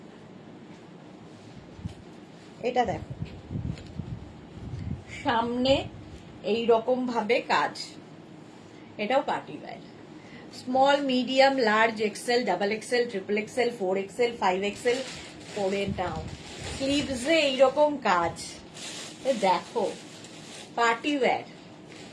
এটা দেখো, সামনে এই রকম ভাবে কাজ। এটাও party wear. Small, medium, large, XL, double XL, triple XL, 4 XL, 5 XL পরে নাও। স্লিভসে এইরকম কাজ। দেখো party wear,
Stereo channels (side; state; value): both; identical; correlation 1.00